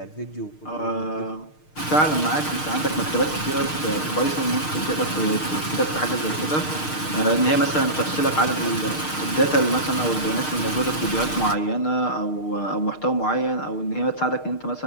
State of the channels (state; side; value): late; right; 6.5 ms